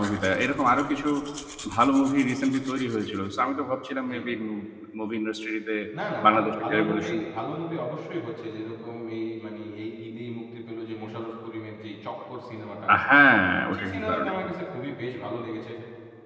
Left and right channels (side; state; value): both; identical; correlation 1.00